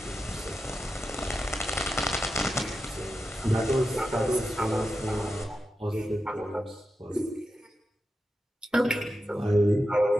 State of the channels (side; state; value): both; normal; correlation 0.90